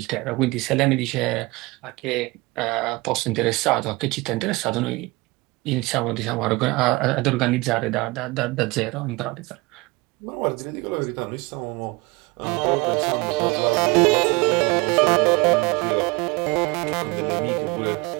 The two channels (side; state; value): left; quieter; 24.0 dB